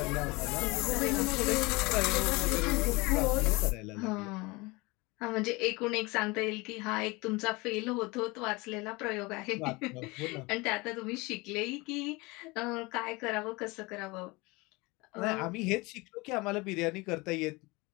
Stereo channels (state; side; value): quieter; right; 24.4 dB